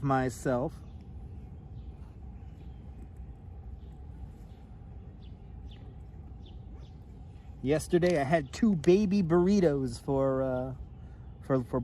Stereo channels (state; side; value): identical; both; correlation 1.00